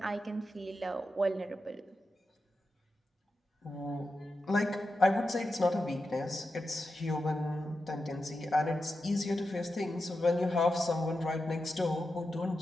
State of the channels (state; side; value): normal; both; correlation 0.89